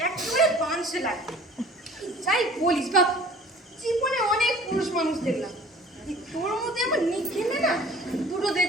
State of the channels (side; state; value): both; normal; correlation 0.48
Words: একেবারে বাঁশে লাগে। যাই বলিস বাপ, জীবনে অনেক পুরুষ মানুষ দেখলাম, এই তোর মধ্যে আমার নিখেলে না দুটো